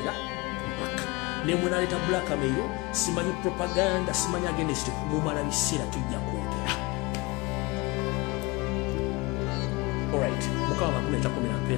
mpaka ne munaleeta blackmail simanyi propaganda simanyi against mumala biseera tujja kwogera alright mukama bakuleeta komera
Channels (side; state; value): right; quieter; 24.5 dB